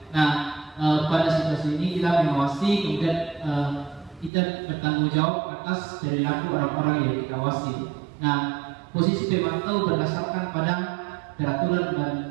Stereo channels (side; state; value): left; drops out; at 4.3 s